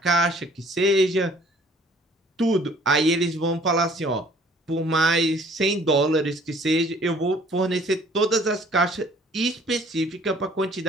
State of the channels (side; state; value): both; normal; correlation 0.56